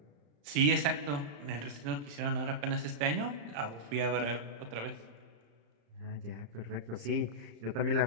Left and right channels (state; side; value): late; left; 35 ms